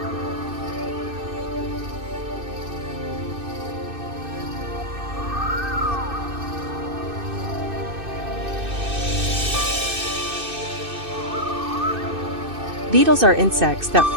Beetles are insects that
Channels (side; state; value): left; late; 2.6 ms